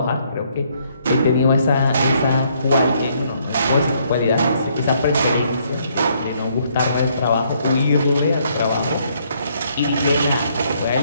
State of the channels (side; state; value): both; inverted; correlation -0.69